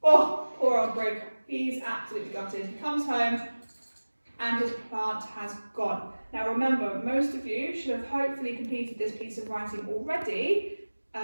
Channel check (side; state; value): both; inverted; correlation -1.00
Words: Oh, poor old Brig. He's absolutely gutted. He comes home and his plant has gone. Now remember, most of you should have hopefully completed this piece of writing already